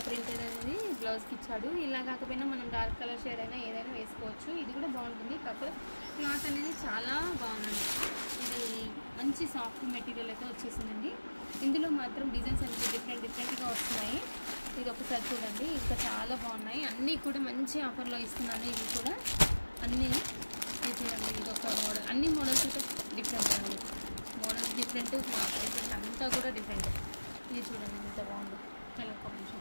ప్రింట్ అనేది బ్లౌజ్కి ఇచ్చాడు. ఇలా కాకపోయినా మనం డార్క్ కలర్ షేడ్ అయినా ఏదైనా వేసుకోవచ్చు. ఇది కూడా బాగుంటుంది. కాకపోతే క్లాత్ అనేది చాలా బాగుందండి. ఇది మంచి సాఫ్ట్ మెటీరియల్ అయితే వచ్చేసిందండి. ఇందులో మాత్రం డిజైన్స్ అనేది డిఫరెంట్గా వస్తున్నాయి. ఇది ఒకసారి చూడండి, ఇంకా చాలా బాగున్నాయి. అన్నీ కూడా మంచి ఆఫర్లో ఇస్తున్నాను. ఇవి కూడా అన్నీ ఇది చూడండి. ఇది ఒక మోడల్, అన్ని మోడల్స్ అయితే డిఫరెంట్ అండి. మోడల్స్ డిఫరెంట్, ప్రైసెస్ అంతా కూడా డిఫరెంట్. ఇది చూడండి ఎంత బాగుంది. కలర్ కాంబినేషన్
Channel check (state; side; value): inverted; both; correlation -1.00